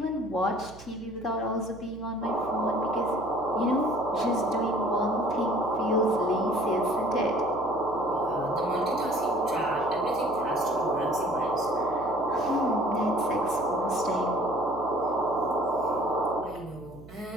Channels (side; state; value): right; noise; hum, 18 dB below the sound